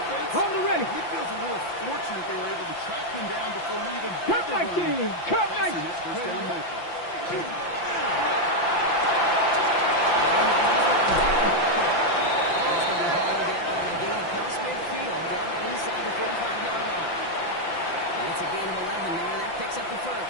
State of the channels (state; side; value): late; right; 5.8 ms